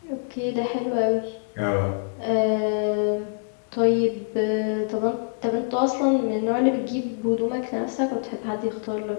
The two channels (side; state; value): right; silent; digital silence